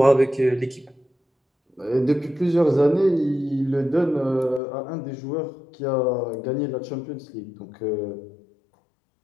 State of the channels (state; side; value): drops out; right; at 4.6 s